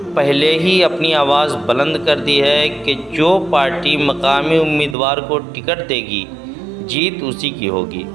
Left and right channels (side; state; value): left; drops out; at 5.0 s